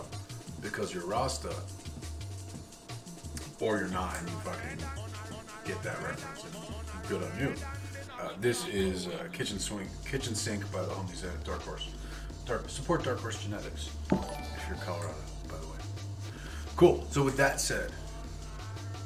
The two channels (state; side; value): identical; both; correlation 1.00